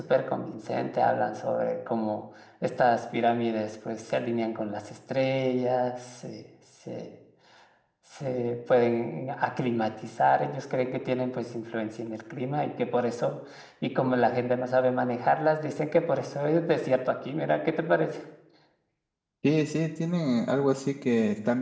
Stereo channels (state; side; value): identical; both; correlation 1.00